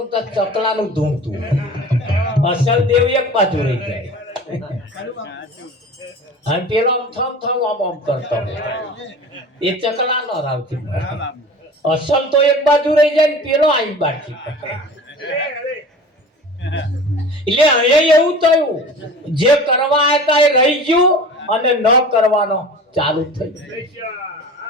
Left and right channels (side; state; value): both; normal; correlation 0.38